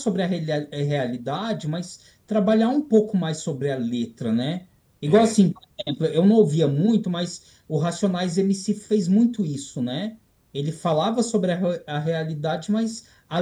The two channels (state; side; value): identical; both; correlation 1.00